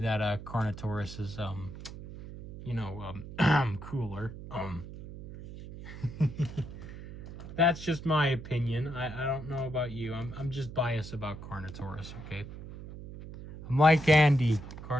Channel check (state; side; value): noise; right; hum, 12 dB below the sound